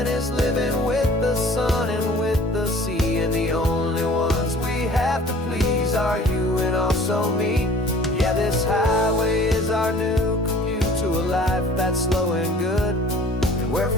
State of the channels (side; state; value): both; normal; correlation 0.49